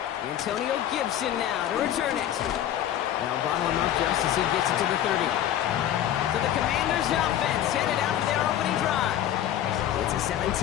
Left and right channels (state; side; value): quieter; right; 11.4 dB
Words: Antonio Gibson now to return it. Now bottle him up just as he gets it to the 30. So the Commanders' offense headed out for their opening drive. It's a